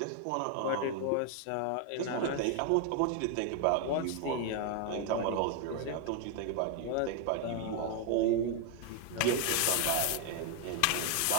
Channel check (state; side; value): different; both; correlation 0.01